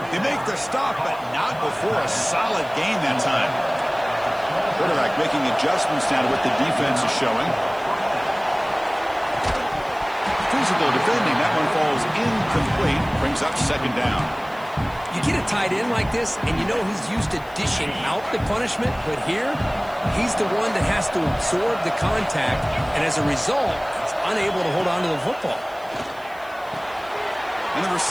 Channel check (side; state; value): right; noise; hiss, 26 dB below the sound